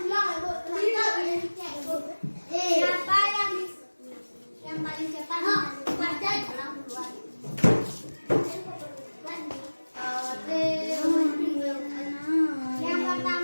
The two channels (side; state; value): both; inverted; correlation -1.00